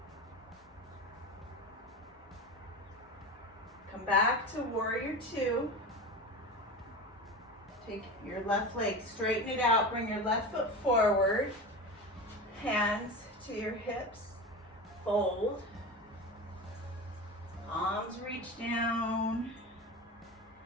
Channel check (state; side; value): normal; both; correlation 0.27